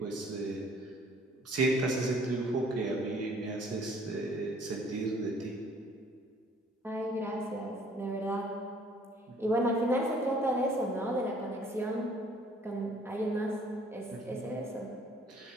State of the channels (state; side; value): normal; both; correlation 0.58